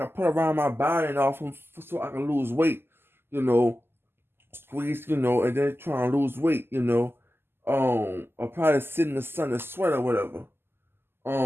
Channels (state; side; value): late; left; 0.11 ms